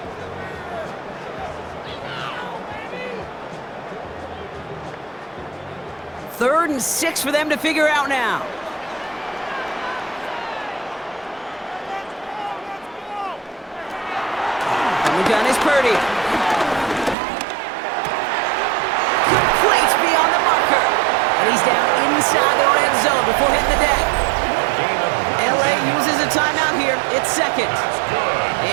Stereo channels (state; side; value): drops out; left; at 17.2 s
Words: Third and 6 for them to figure out now. And the gun is Purdy. Complete beyond the marker. And he's down inside the red zone before hitting the deck. LA uses a timeout here. It's 2nd.